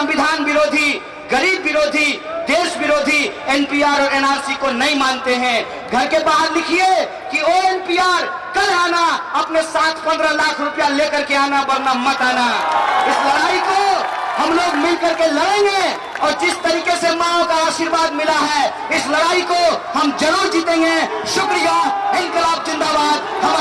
विरोधी, गरीब विरोधी, देश विरोधी एनपीआर और एनआरसी को नहीं मानते हैं। घर के बाहर लिखिए कि ओ एनपीआर, कल आना, अपने साथ 15 लाख रुपया लेकर के आना, वरना मत आना। इस लड़ाई को हम लोग मिलकर के लड़ेंगे और जिस तरीके से माओ का आशीर्वाद मिला है, इस लड़ाई को हम जरूर जीतेंगे। शुक्रिया। इनकलाब जिंदाबाद,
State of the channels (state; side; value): identical; both; correlation 1.00